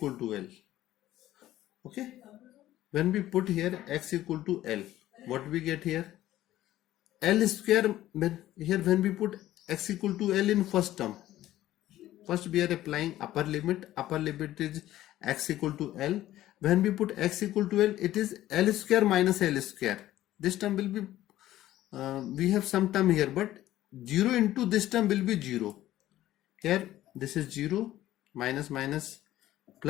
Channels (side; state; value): right; quieter; 14.2 dB